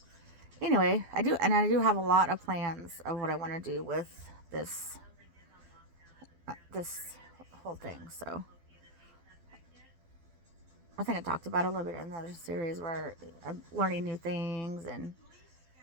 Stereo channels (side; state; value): left; late; 12 ms